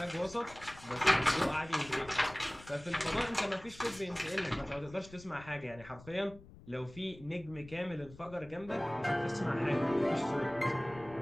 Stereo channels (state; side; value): noise; left; rumble, 20 dB below the sound